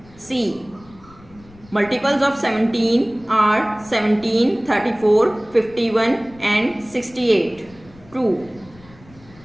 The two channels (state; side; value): noise; left; rumble, 24 dB below the sound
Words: C. Multiples of 17 are 17, 34, 51 and 68. True.